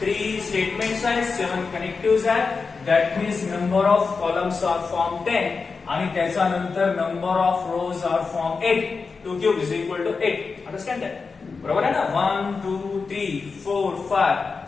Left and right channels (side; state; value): right; quieter; 4.7 dB